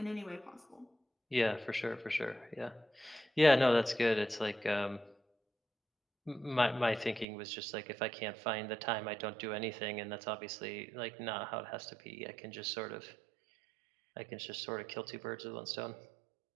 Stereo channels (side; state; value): left; drops out; at 7.2 s